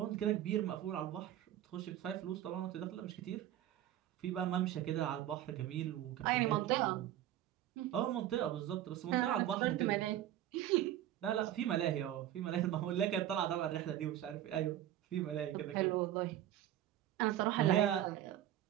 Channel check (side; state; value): left; quieter; 12.5 dB